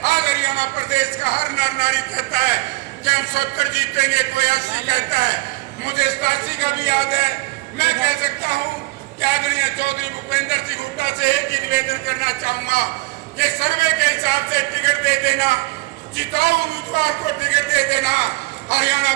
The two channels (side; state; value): left; quieter; 23.0 dB